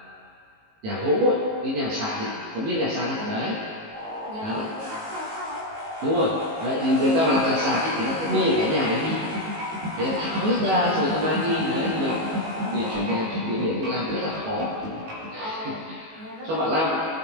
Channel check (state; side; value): late; left; 19 ms